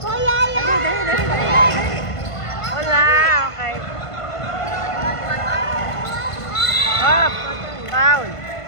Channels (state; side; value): late; right; 1.5 ms